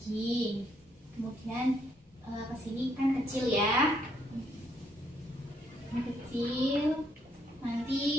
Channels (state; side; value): normal; both; correlation 0.72